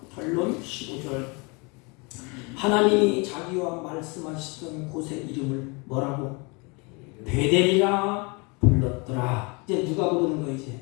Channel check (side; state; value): right; quieter; 29.7 dB